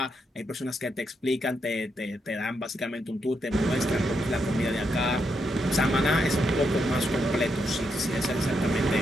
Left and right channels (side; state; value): both; normal; correlation 0.81